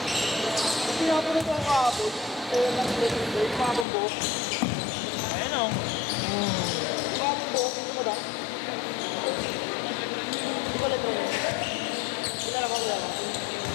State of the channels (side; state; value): right; drops out; at 3.9 s